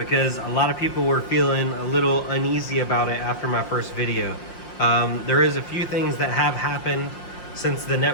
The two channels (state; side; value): late; right; 5.7 ms